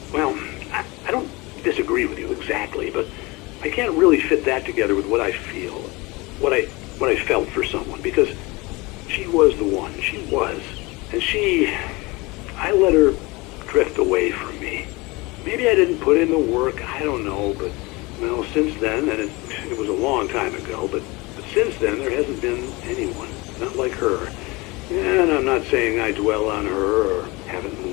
well, I don't disagree with you exactly, but I can't really fit that together with what I feel, what I felt for someone, because she was the one. She was. And I let her drift away from me. Maybe I didn't put in the work, I don't know, but, well, since then, and it was a long time ago, but since then, there hasn't been anyone, not like her. And I'm not saying I dwell on her or haven't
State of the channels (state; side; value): quieter; right; 24.1 dB